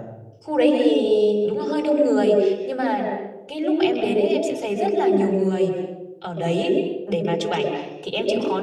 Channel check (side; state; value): both; identical; correlation 1.00